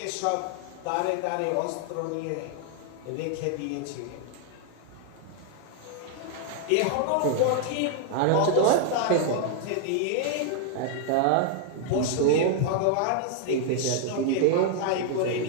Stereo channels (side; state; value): both; different; correlation 0.00